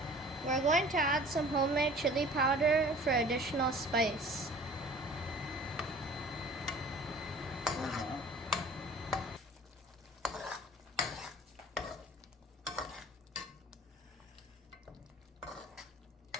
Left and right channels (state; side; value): normal; both; correlation 0.46